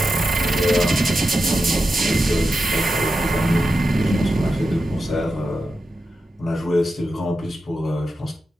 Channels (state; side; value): normal; both; correlation 0.90